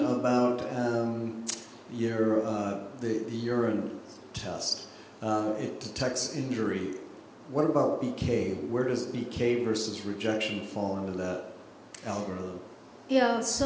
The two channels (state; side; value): identical; both; correlation 1.00